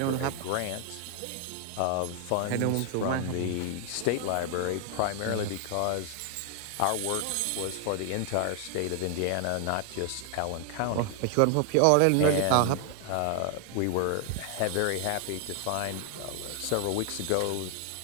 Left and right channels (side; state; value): both; different; correlation 0.00